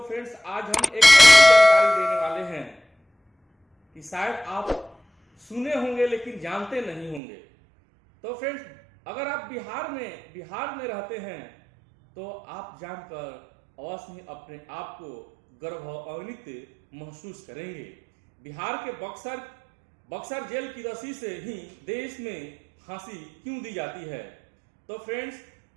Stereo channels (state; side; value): drops out; left; at 7.2 s